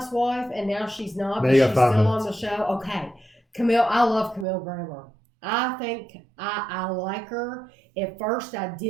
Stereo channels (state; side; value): drops out; left; at 4.5 s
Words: and now she's not, but she's still on the show. Okay. Camille, I love Camille Grammer. I think I like her. At first, I